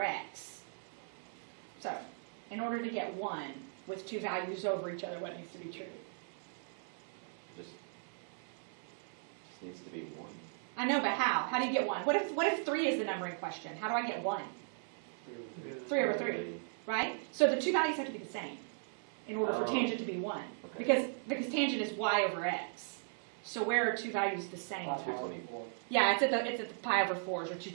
x. So in order to get 1 with 2 values over each other, what needs to be true? Just needs to be 1. I know, but how? How do you get 1? What if 3 is the number in question? How do I get 1? 3 over 3, right? So the 2 values have to be the same in order for tangent to be 1. Okay. Because tangent is y over x. So where are 2 values the same? 224. Yeah, it's at the pi over 4s, or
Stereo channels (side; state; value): left; silent; 53 dB below the other